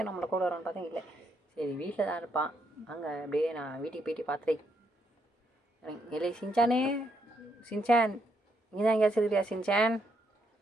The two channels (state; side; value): normal; both; correlation 0.76